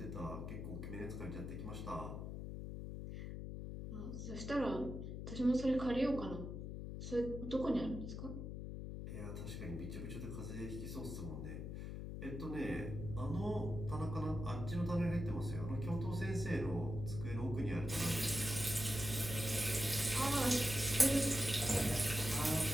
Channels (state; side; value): noise; left; hum, 6 dB below the sound